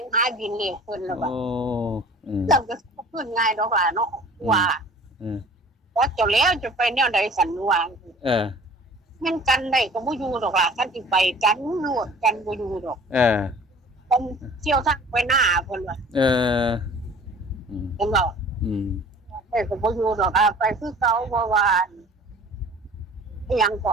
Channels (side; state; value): both; normal; correlation 0.47